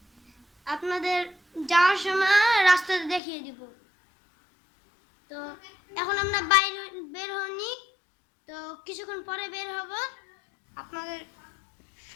আপনাদের যাওয়ার সময় রাস্তাতে দেখিয়ে দিব। তো এখন আমরা বের হইনি, তো কিছুক্ষণ পরে বের হব। আপনাদের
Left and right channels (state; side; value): drops out; right; at 3.2 s